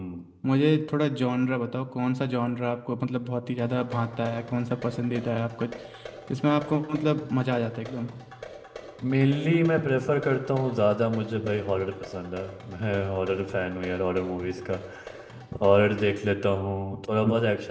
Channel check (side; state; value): both; identical; correlation 1.00